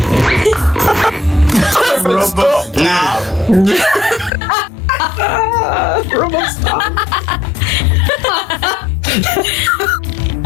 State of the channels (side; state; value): right; drops out; at 4.3 s